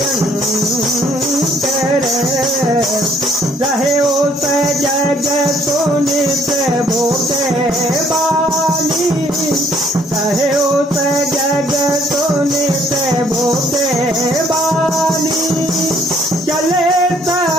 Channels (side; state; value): both; normal; correlation 0.64